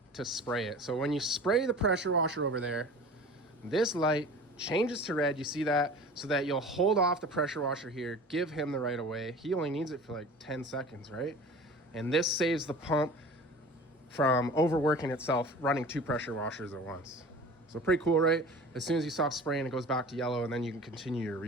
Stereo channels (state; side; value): normal; both; correlation 0.40